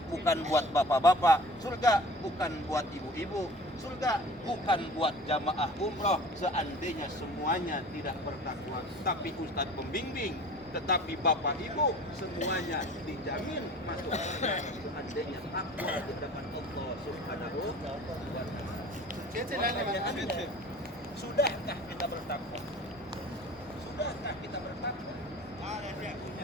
bukan buat bapak-bapak. Surga bukan buat ibu-ibu. Surga bukan buat jamaah umroh seandainya semuanya tidak bertakwa. Tapi ustadz pembimbing, tetapi bapak ibu semuanya dijamin masuk surga seandainya takwa di hadapan Allah Subhanahu wa taala. Sudahkah kita bertakwa? Sudahkah kita bertakwa? Ada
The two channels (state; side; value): normal; both; correlation 0.43